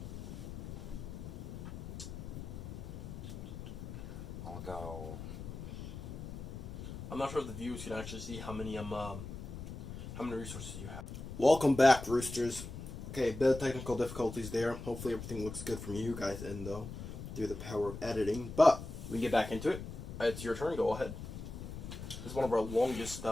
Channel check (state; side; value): noise; left; rumble, 9 dB below the sound